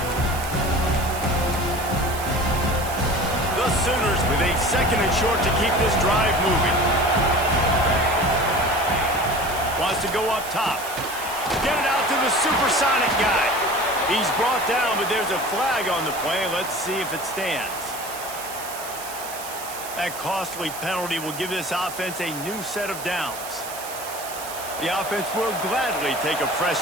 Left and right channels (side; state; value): right; noise; hiss, 11 dB below the sound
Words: The Sooners with a 2nd and short to keep this drive moving. Wants to go up top. Get it out to the supersonic guy. He's brought down, but there's a flag on the play. Let's see if it stands. That costly penalty will give this offense a new set of downs. The offense will gladly take a fresh